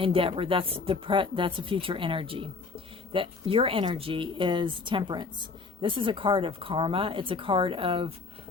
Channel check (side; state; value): right; quieter; 4.3 dB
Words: That's a future energy. That your energy is Temperance. This is a card of karma. It's a card of